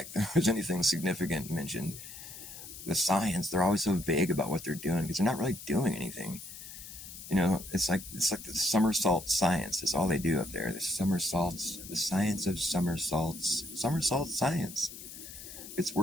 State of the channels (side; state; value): left; noise; hiss, 13 dB below the sound